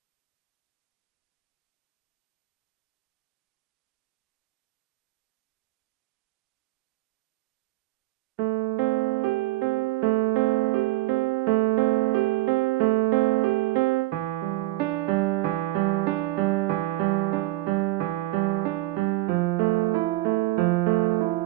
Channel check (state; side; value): quieter; left; 18.1 dB